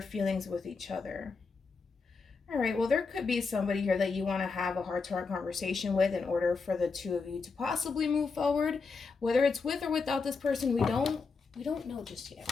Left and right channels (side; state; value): right; quieter; 4.7 dB